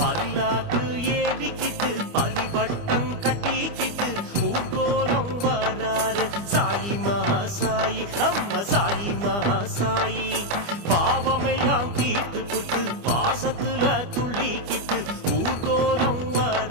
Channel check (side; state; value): left; late; 25 ms